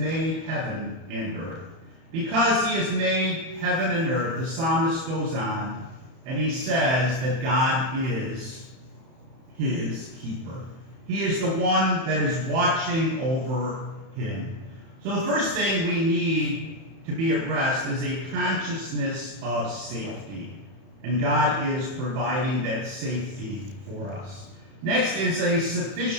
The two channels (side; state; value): left; late; 31 ms